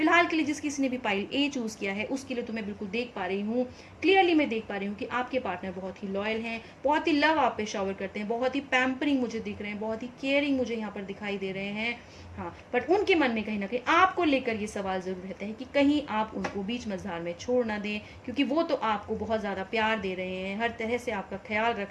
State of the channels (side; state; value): both; identical; correlation 1.00